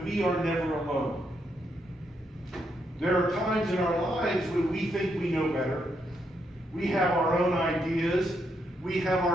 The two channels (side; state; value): both; normal; correlation 0.79